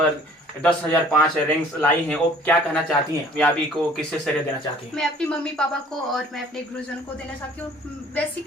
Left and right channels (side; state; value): both; normal; correlation 0.53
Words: 10,005 रैंक्स लाई हैं, वो क्या कहना चाहती हैं? कामयाबी को किससे श्रेय देना चाहती हैं? मैं अपनी मम्मी पापा को और मैं अपने गुरुजन को देना चाहती हूँ।